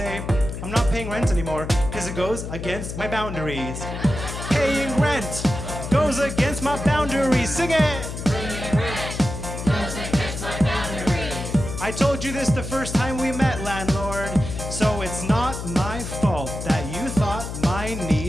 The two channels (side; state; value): left; noise; hum, 7 dB below the sound